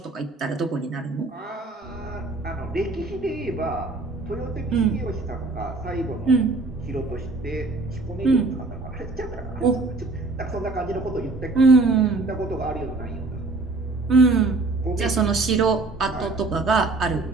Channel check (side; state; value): left; quieter; 3.4 dB